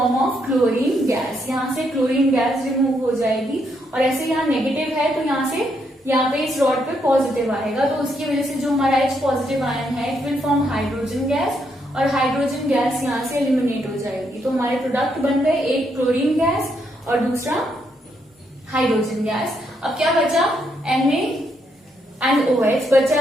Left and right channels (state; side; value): normal; both; correlation 0.76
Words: of chlorine gas। यहाँ से क्लोरीन गैस रिमूव हो जाएगी और ऐसे यहाँ नेगेटिव है तो यहाँ से यहाँ पे इस रॉड पे पॉजिटिव आएगा, तो उसकी वजह से जो हमारा H पॉजिटिव आयन है it will form hydrogen gas और हाइड्रोजन गैस यहाँ से एलिमिनेट हो जाएगी। तो हमारे प्रोडक्ट बन गए, एक क्लोरीन गैस और दूसरा हाइड्रोजन गैस। अब क्या बचा, Na एंड OH बचा